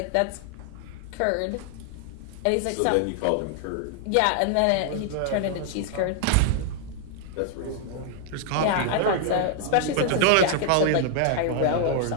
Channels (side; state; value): both; different; correlation 0.00